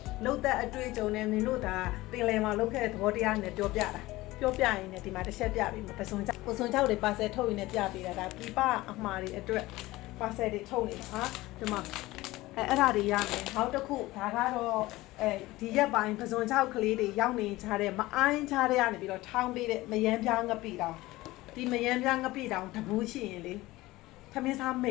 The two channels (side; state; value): right; quieter; 18.7 dB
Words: လှုပ်သက်အတွေ့အကြုံနဲ့မင်းတို့ဒါပင်လယ်မှာလှုပ်ခဲ့တဲ့သဘောတရားနဲ့ပြောပြရင်လည်းဒီမှာတစ်ချက်ပြပြီးပစုံကြောက်တွေပါဆယ်ထုတ်ရင်းနဲ့ပြပေးတာဒါပြပအမှားတွေအတွက်ပါဆယ်တွေထုတ်နေတာဟာဒီမှာအဲ့ဒါတွေရမယ်နောက်တစ်ခုဒါကတော့ဒီရက်ပိုင်းပစုံချောက်ကလေးတွေရောက်နေကြတဲ့မအိုင်းချတဲ့ကနေပြီးတော့ထောင်းပေးတဲ့မယမ်းပြားငပိတောင်ဒီမယမ်းပြားငပိတောင်တဘူးရှိရင်လေသမင်းစားမိ